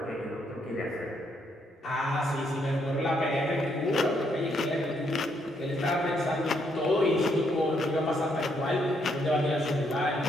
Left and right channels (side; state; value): both; normal; correlation 0.74